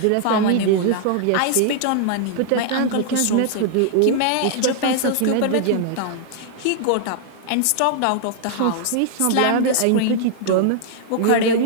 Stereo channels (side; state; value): both; different; correlation -0.01